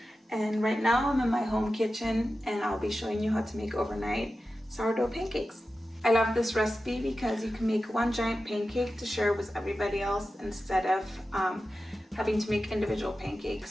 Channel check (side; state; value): both; normal; correlation 0.93